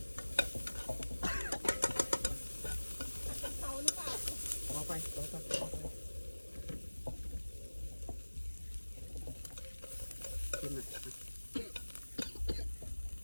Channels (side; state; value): both; inverted; correlation -1.00